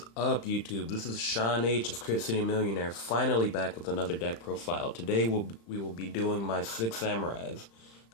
up, YouTube? This is Sean H of Crit City Millionaire, finally back with another deck profile. Today we will be doing my 6 Samurais.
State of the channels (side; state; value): right; late; 35 ms